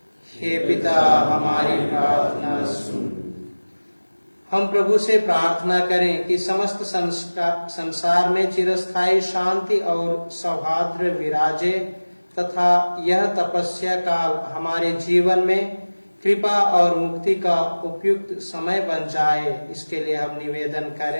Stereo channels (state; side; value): inverted; both; correlation -1.00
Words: हे पिता हमारी प्रार्थना सुन। हम प्रभु से प्रार्थना करें कि समस्त संसार में चिरस्थायी शांति और सौहार्द विराजे तथा यह तपस्या काल हमारे जीवन में कृपा और मुक्ति का उपयुक्त समय बन जाए। इसके लिए हम निवेदन